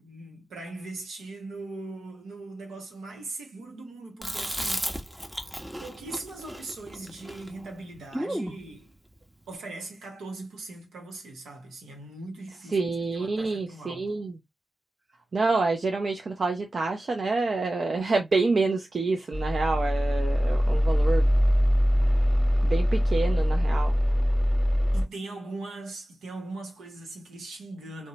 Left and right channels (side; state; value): both; normal; correlation 0.95